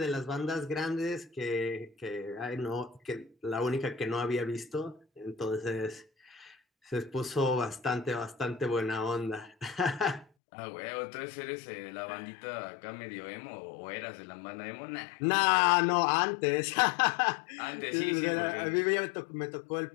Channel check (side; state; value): right; drops out; at 10.2 s